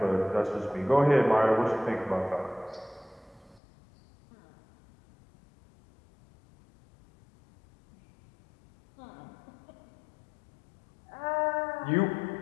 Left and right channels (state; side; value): drops out; right; at 3.6 s